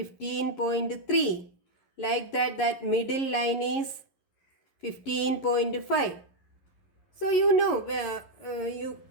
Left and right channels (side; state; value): right; late; 11 ms